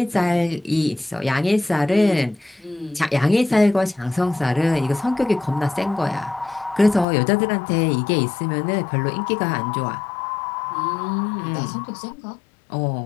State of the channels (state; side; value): drops out; right; at 7.1 s